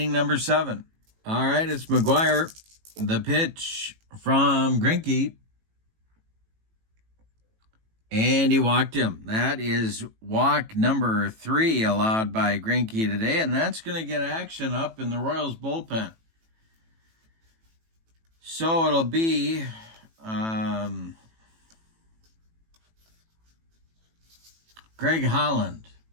number 7. All right, it's McGuire. The pitch from Greinke. And he walked him. That is walk number 3 allowed by Greinke today, and that's going to get action up in the Royals bullpen. So it'll be Greg Holland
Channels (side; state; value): left; late; 18 ms